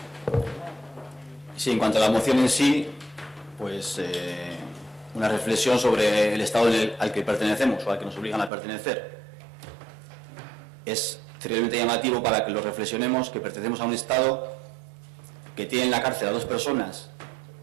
Sí, en cuanto a la moción en sí, pues una reflexión sobre el estado al que pertenecemos o al que nos obligan a pertenecer. Es terriblemente llamativo para que lo reflexionemos que pertenecemos a un estado que tiene en la cárcel a dos personas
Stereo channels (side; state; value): left; drops out; at 8.5 s